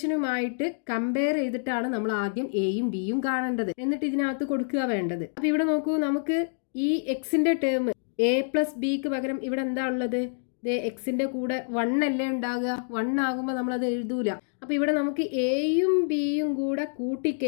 കമ്പയർ ചെയ്തിട്ടാണ് നമ്മൾ ആദ്യം എയും ബിയും കാണേണ്ടത്. എന്നിട്ട് ഇതിനകത്ത് കൊടുക്കുക വേണ്ടത്. അപ്പോൾ ഇവിടെ നോക്കൂ, നമുക്ക് ഈ എക്സിന്റെ ടേം a + bക്ക് പകരം ഇവിടെ എന്താ ഉള്ളത്? എക്സിന്റെ കൂടെ 1 അല്ലേ ഉണ്ടാകുക. 1 ആകുമ്പോൾ നമ്മളത് എഴുതൂല. അപ്പോൾ ഇവിടെ നമുക്ക് എയും ബിയും കൂടെ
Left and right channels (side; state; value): right; silent; digital silence